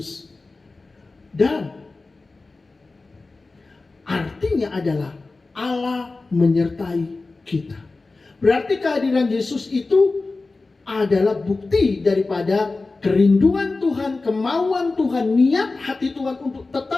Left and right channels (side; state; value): right; quieter; 3.6 dB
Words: Dan artinya adalah Allah menyertai kita. Berarti kehadiran Yesus itu adalah bukti daripada kerinduan Tuhan, kemauan Tuhan, niat hati Tuhan untuk